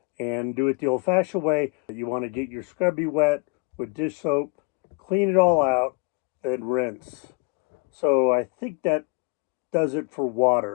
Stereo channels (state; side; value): quieter; right; 29.4 dB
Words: and do it the old-fashioned way. You want to get your scrubby wet with dish soap, clean it all out, and rinse. So I think that does it for